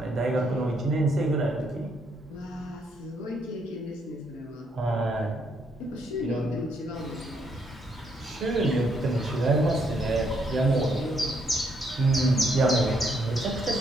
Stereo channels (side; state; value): both; normal; correlation 0.73